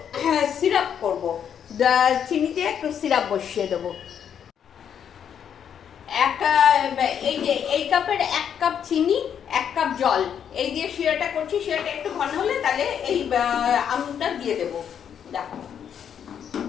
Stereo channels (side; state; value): right; quieter; 8.4 dB